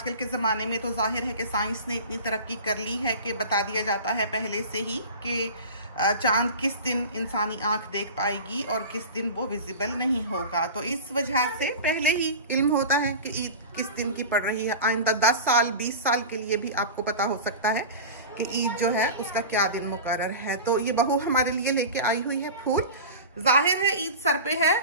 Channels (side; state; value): both; inverted; correlation -0.32